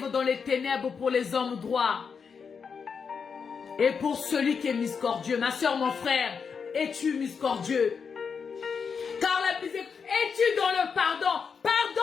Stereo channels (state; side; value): quieter; right; 6.0 dB